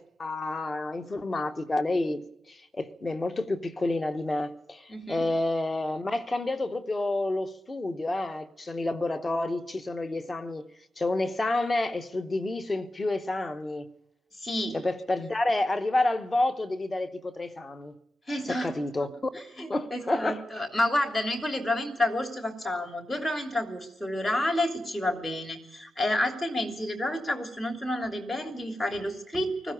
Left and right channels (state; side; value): normal; both; correlation 0.93